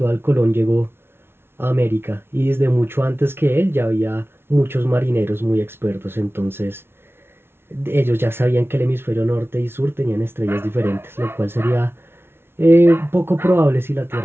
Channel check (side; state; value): left; late; 0.12 ms